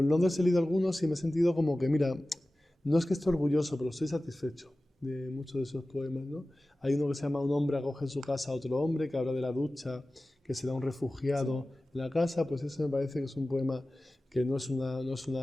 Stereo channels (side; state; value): both; normal; correlation 0.96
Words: Londres he leído algunos y me he sentido como que, mira, no es que esté orgulloso, pero estoy satisfecho de muchos de esos poemas, ¿no? Hay uno que se llama Un hombre acoge en su casa a otro hombre, que habla de la ducha, que se da un refugiado en la casa, pues ese me parece que es un poema que no es una